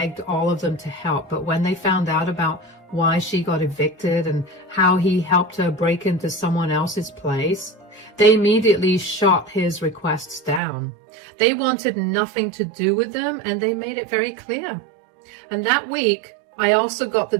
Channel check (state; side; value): drops out; left; at 10.6 s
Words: all of them to help, but when they found out about why she got evicted and how he helped her break into someone else's place, they immediately shot his requests down. They wanted nothing to do with them, and they made it very clear. And that week, I also got the